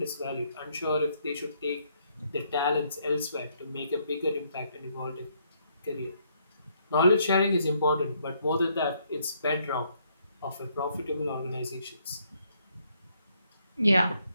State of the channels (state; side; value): inverted; both; correlation -0.71